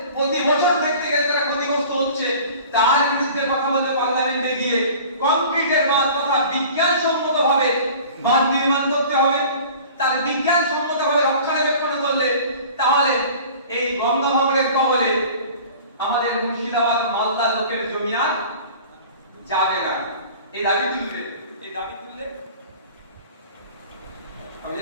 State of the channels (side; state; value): both; inverted; correlation -0.43